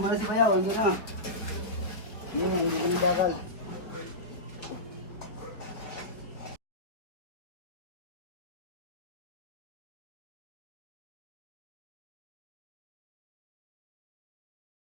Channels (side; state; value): right; late; 4.3 ms